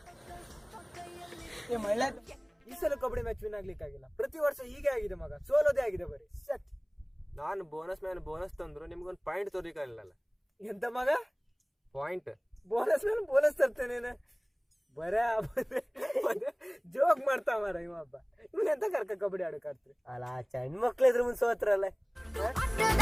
ಈ ಸಲ ಕಬಡ್ಡಿ ಮ್ಯಾಚ್ ವಿನ್ ಆಗ್ಲಿಕ್ಕಾಗಿಲ್ಲ ಪ್ರತಿ ವರ್ಷ ಹೀಗೆ ಆಗಿದೆ ಮಗ ಸೋಲೋದೇ ಆಗಿದೆ ಬರೀ ಸೆಟ್ ನಾನು ಬೋನಸ್ ಮ್ಯಾನ್ ಬೋನಸ್ ತಂದ್ರು ನಿಮ್ಗೊಂದು ಪಾಯಿಂಟ್ ತೋರಿಕಾಗಲ್ಲ ಎಂತ ಮಗ ಪಾಯಿಂಟ್ ಬೋನಸ್ ಮೇಲೆ ಬೋನಸ್ ತರ್ತೇನೆ ಬರ ಜೋಕ್ ಮಾಡ್ತಾ ಮಾರ ಇವಬ್ಬ ಇವನ್ ಎಂತ ಕರ್ಕ ಕಬಡ್ಡಿ ಆಡಕ್ ಆಡ್ತ್ರಿ ಅಲ್ಲ ಚಂಡ್ ಮಕ್ಳು ಇದ್ರ ಮುಂದೆ ಸೋತ್ರಲ್ಲ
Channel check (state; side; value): identical; both; correlation 1.00